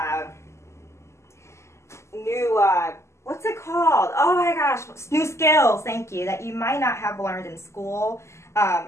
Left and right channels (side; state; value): right; late; 0.13 ms